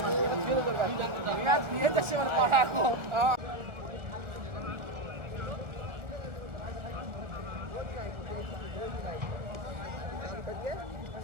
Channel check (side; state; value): left; late; 1.2 ms